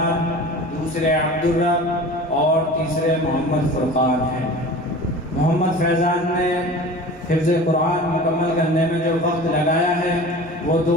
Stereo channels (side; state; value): both; normal; correlation 0.38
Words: دوسرے عبدالرب اور تیسرے محمد فرقان ہیں۔ محمد فیضان نے حفظ قرآن مکمل کرنے میں جو وقت لگایا ہے وہ